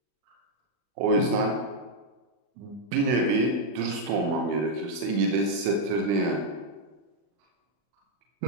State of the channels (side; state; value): left; late; 40 ms